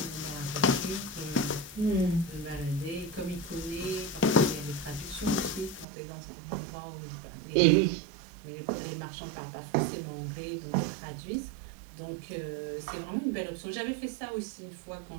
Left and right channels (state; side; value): drops out; left; at 5.9 s